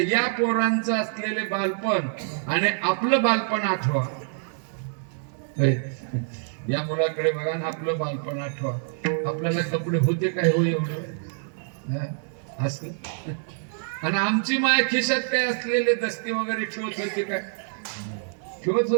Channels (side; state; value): left; silent; 61 dB below the other